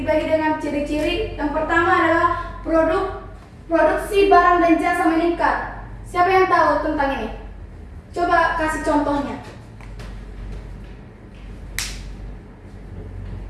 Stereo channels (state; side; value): identical; both; correlation 1.00